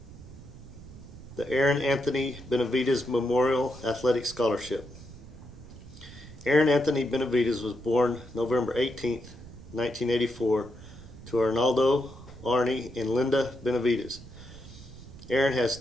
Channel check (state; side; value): noise; right; rumble, 16 dB below the sound